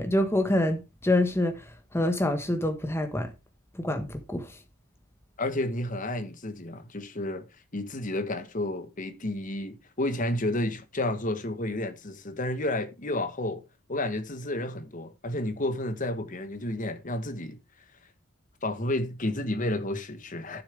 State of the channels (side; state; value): both; normal; correlation 0.60